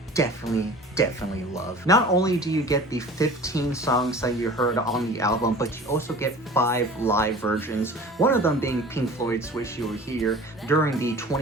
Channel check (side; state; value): both; normal; correlation 0.42